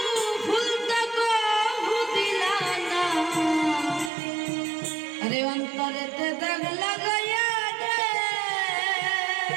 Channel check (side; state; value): left; drops out; at 4.1 s